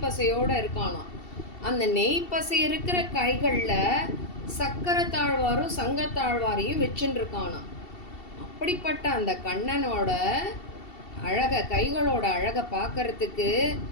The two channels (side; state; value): right; late; 2.7 ms